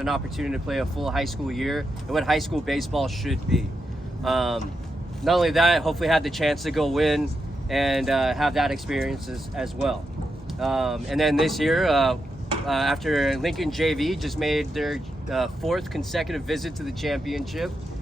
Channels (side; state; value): both; normal; correlation 0.85